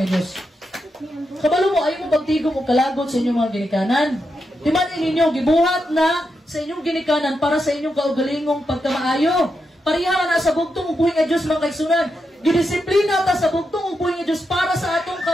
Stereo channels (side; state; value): both; normal; correlation 0.85